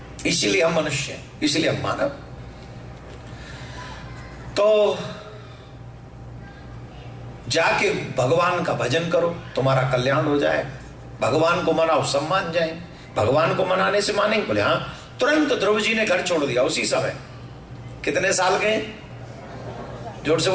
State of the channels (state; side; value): identical; both; correlation 1.00